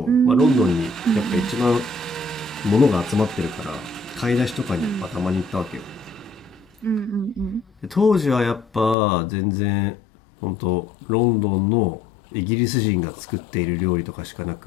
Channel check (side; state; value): right; drops out; at 9.0 s